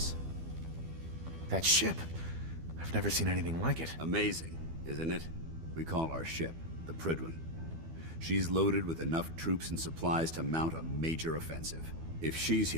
That ship. I've never seen anything like it. Amazing, isn't it? We call our ship the Prydwen. She's loaded with enough troops and supplies to mount a major offensive. If she's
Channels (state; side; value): late; left; 12 ms